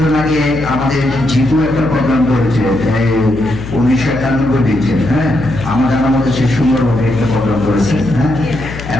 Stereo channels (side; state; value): left; noise; hum, 11 dB below the sound